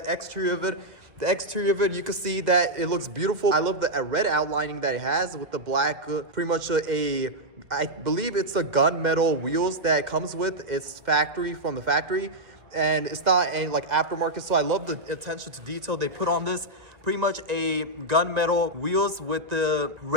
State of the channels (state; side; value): late; left; 2.1 ms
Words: exterior of it. The exterior of it, you can see that it looks beautiful. I love the red outlining that it has with the black, pretty much I believe it's a gunmetal wheels that it comes with. It's from the factory. And it's not any like aftermarket, so I love the attention to detail they put on this. Pretty much a gunmetal wheels with the